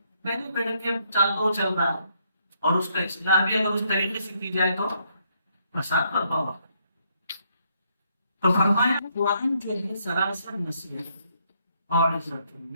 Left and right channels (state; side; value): inverted; both; correlation -0.73